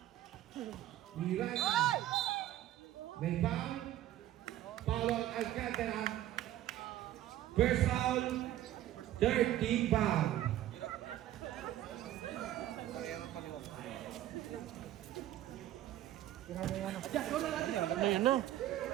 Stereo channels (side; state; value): left; quieter; 13.2 dB